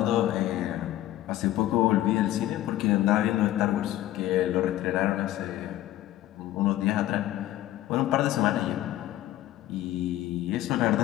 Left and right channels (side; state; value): right; quieter; 14.3 dB